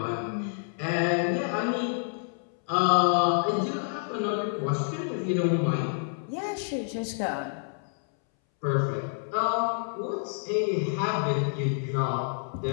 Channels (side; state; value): right; silent; 59 dB below the other